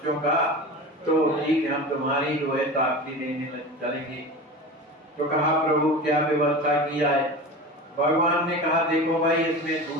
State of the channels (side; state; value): both; normal; correlation 0.31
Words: का, तो ठीक है हम तुम्हारी जो है साक्षी देने चलेंगे। तो कहा प्रभु क्या व्यवस्था किया है? भगवान ने कहा देखो भाई इसमें